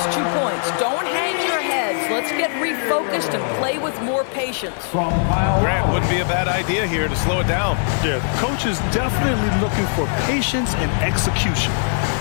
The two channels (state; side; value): silent; right; digital silence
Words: 2 points. Don't hang your heads. Let's get refocused and play with more patience. Grant wouldn't be a bad idea here to slow it down. Yeah, the coach is definitely looking for patience and execution.